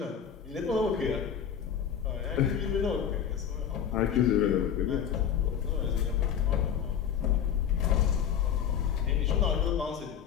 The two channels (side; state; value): right; quieter; 8.4 dB